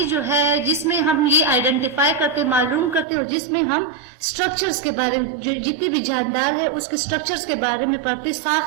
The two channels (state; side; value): drops out; left; at 3.1 s